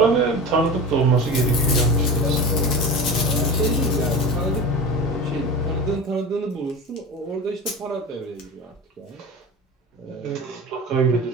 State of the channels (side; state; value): both; normal; correlation 0.30